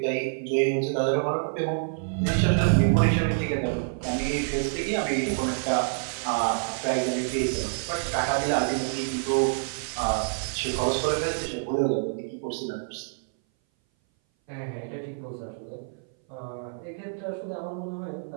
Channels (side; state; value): left; silent; 58 dB below the other